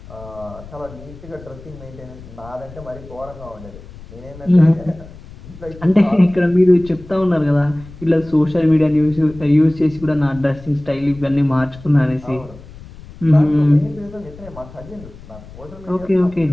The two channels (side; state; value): left; noise; rumble, 18 dB below the sound